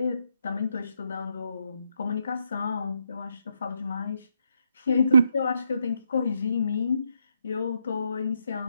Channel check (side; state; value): both; inverted; correlation -0.78